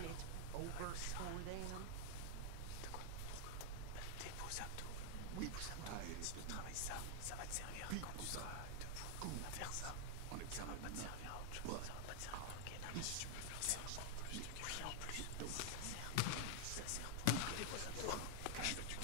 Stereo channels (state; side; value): different; both; correlation 0.00